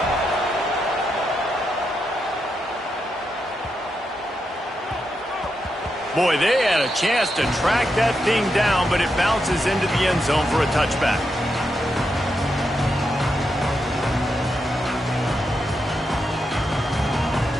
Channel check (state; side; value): normal; both; correlation 0.84